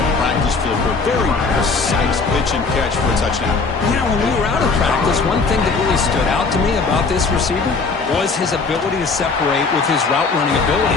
practice field for a very precise pitch and catch for a touchdown. You know, when we were out of practice, one thing that really stood out to me about this receiver was his ability to separate with his route running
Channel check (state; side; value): quieter; right; 4.4 dB